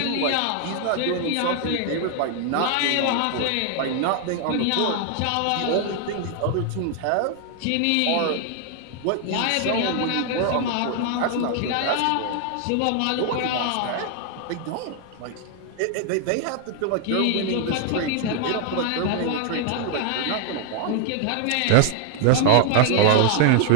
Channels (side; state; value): both; different; correlation 0.00